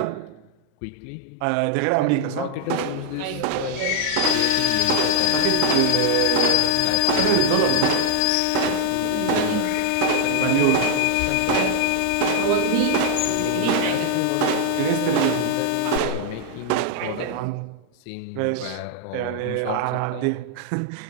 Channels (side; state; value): both; different; correlation 0.00